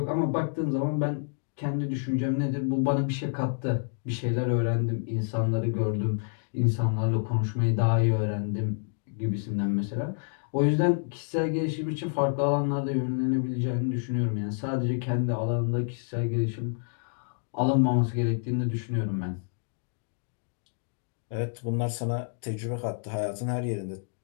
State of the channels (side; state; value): right; silent; digital silence